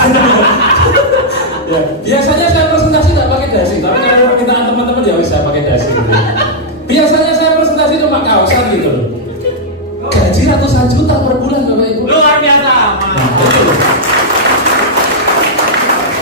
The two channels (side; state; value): both; normal; correlation -0.05